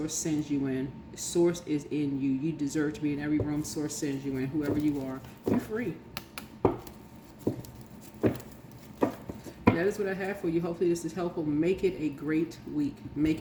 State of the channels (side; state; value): both; identical; correlation 1.00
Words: sends you in, Source is in you. You deserve to be in every room Source sends you in, whoever you are. You're free. That is what I have for you. Hopefully this is helpful. Make it a great week. Make